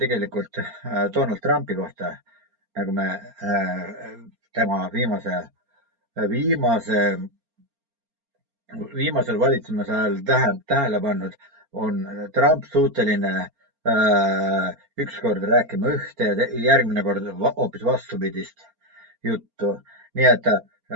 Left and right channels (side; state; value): left; late; 4.4 ms